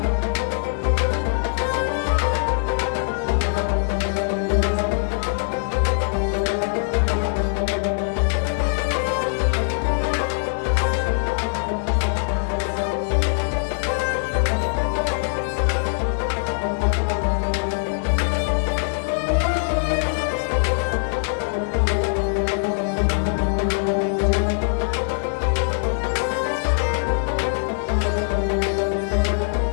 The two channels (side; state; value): right; silent; digital silence